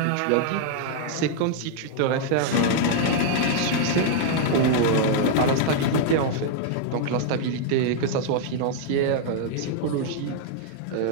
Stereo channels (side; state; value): both; different; correlation -0.01